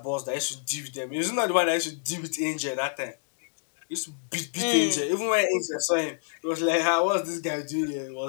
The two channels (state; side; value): silent; right; digital silence